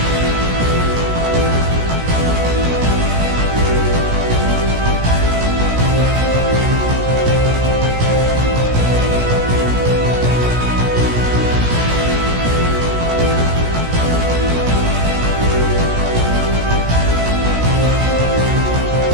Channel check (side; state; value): left; late; 17 ms